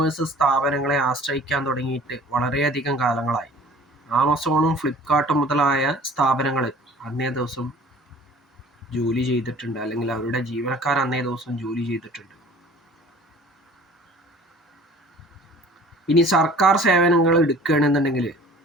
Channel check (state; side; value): normal; both; correlation 0.48